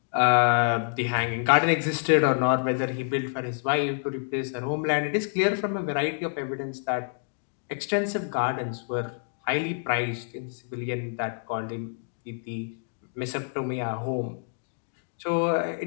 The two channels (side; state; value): right; silent; digital silence